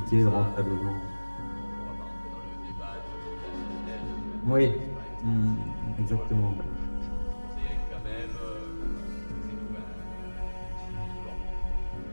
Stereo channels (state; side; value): inverted; both; correlation -1.00